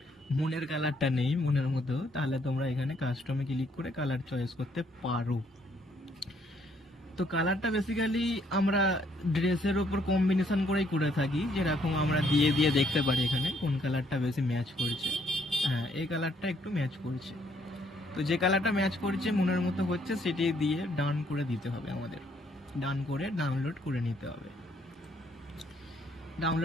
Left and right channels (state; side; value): normal; both; correlation 0.68